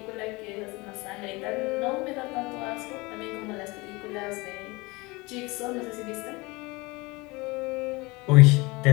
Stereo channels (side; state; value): right; quieter; 24.3 dB